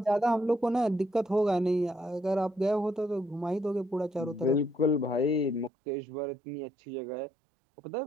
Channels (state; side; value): drops out; left; at 5.7 s